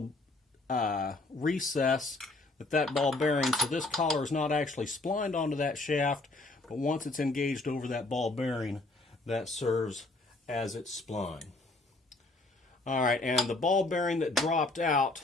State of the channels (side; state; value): right; quieter; 3.1 dB